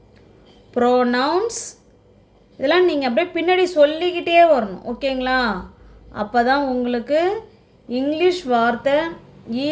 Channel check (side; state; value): both; identical; correlation 1.00